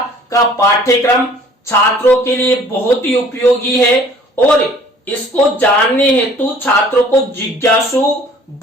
का पाठ्यक्रम छात्रों के लिए बहुत ही उपयोगी है और इसको जानने हेतु छात्रों को जिज्ञासु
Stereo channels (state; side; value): normal; both; correlation 0.53